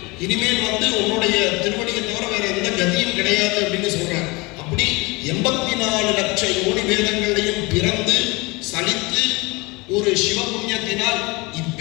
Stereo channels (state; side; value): quieter; right; 25.4 dB